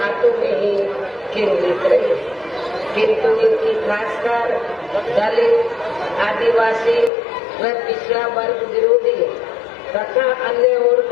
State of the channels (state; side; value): drops out; right; at 7.1 s